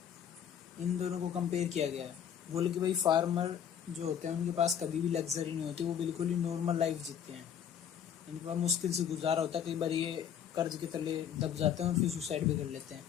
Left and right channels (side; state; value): right; quieter; 8.8 dB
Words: इन दोनों को कंपेयर किया गया है। बोले कि भाई फार्मर जो होते हैं उनके पास कभी भी लग्जरी नहीं होती, वो बिल्कुल ही नॉर्मल लाइफ जीते हैं, इनके पास मुश्किल से गुजारा होता है, कई बार ये कर्ज के तले दब जाते हैं और फिर सुसाइड भी कर लेते हैं।